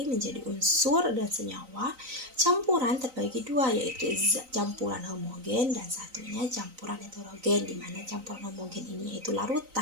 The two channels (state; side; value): late; left; 3.9 ms